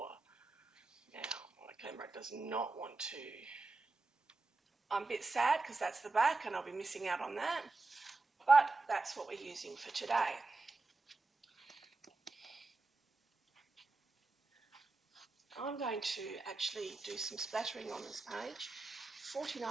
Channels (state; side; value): quieter; left; 3.5 dB